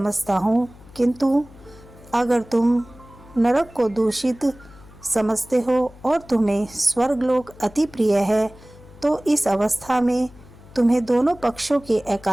हूँ, किंतु अगर तुम नरक को दूषित समझते हो और तुम्हें स्वर्गलोक अति प्रिय है तो इस अवस्था में तुम्हें दोनों पक्षों की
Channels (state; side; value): noise; left; hum, 22 dB below the sound